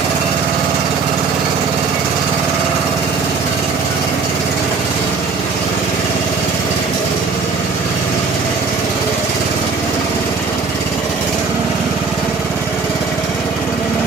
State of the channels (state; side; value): quieter; left; 4.8 dB